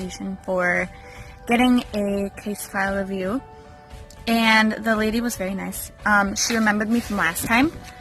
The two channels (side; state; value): both; identical; correlation 1.00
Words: for getting a case file review, and the lady was very nice. She remembered me from last time,